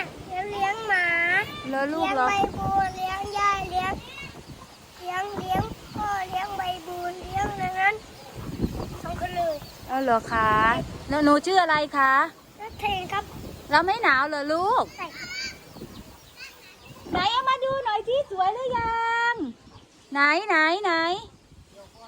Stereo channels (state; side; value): identical; both; correlation 1.00